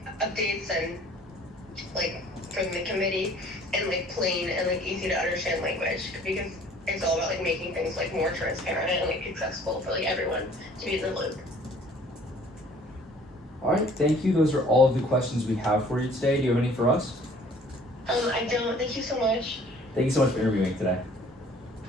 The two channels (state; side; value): normal; both; correlation 0.54